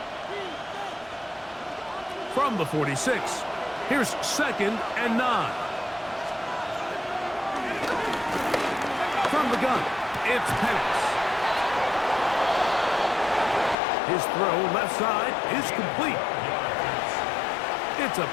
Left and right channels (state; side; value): drops out; right; at 13.8 s